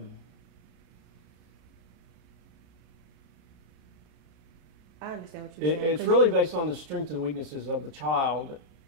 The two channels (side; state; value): left; late; 33 ms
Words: understand what you're saying. It's really based on the strengths and weaknesses of the child,